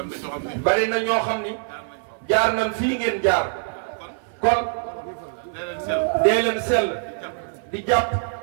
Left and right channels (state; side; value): silent; left; 56 dB below the other